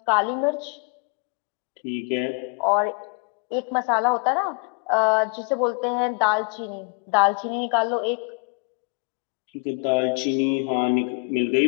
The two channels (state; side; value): quieter; right; 35.5 dB